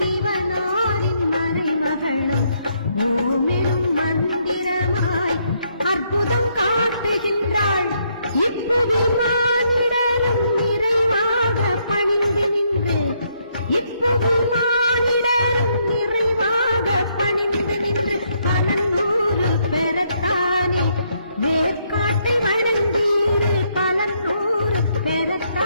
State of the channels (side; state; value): both; inverted; correlation -0.73